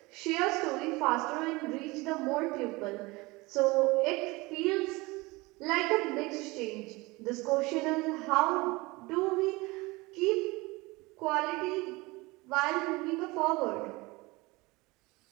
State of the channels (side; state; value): left; quieter; 23.1 dB